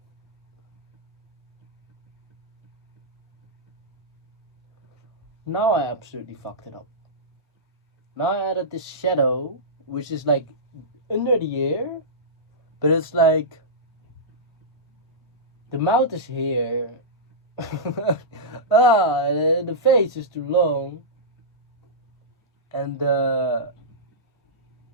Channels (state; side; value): normal; both; correlation -0.15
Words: I absolutely fucked it up. Now I added this shadow, which is like under the ear, but it's like the mouth is here. The face is too long. And how